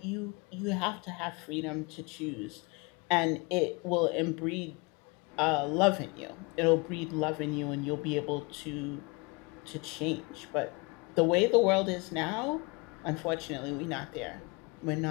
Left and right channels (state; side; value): quieter; right; 28.2 dB